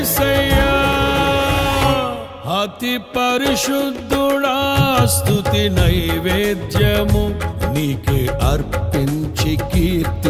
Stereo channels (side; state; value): both; identical; correlation 1.00